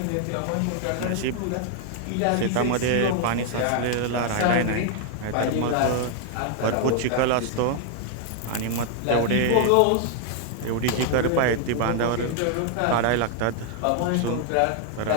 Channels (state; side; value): different; both; correlation 0.00